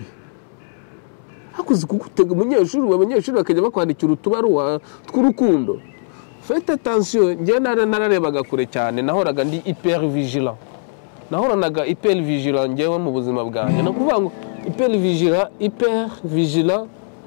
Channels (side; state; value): right; silent; 66 dB below the other